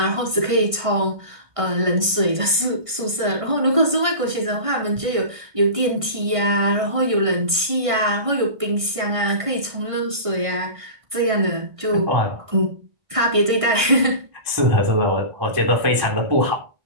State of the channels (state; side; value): late; left; 1.5 ms